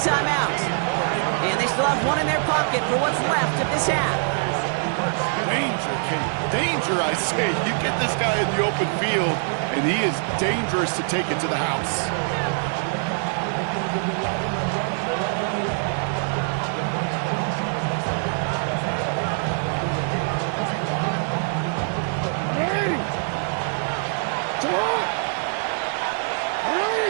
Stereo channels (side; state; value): left; silent; 63 dB below the other